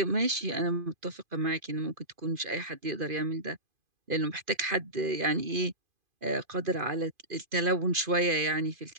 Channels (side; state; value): left; late; 2.5 ms